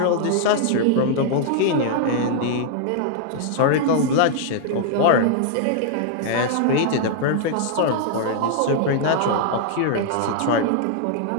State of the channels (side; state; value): both; different; correlation 0.00